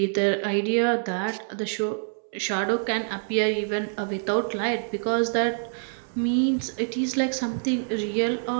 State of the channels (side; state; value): left; silent; 61 dB below the other